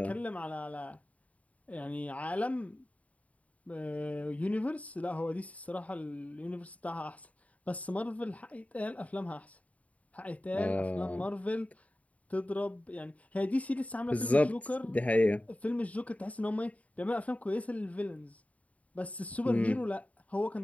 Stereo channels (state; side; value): late; right; 0.068 ms